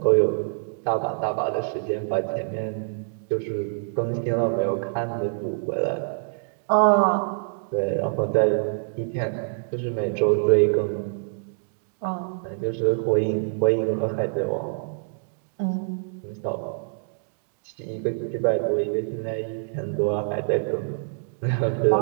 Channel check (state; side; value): silent; left; digital silence